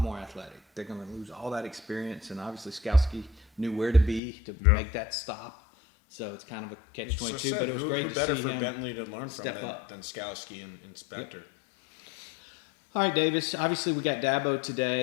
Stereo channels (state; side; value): drops out; right; at 4.2 s